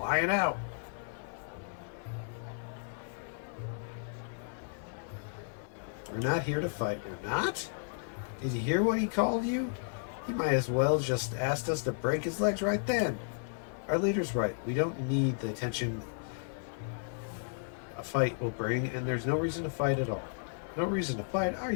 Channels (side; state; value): right; silent; 55 dB below the other